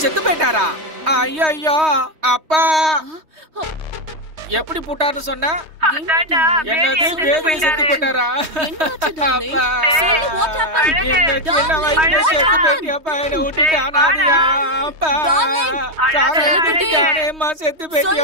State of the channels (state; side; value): late; left; 3.2 ms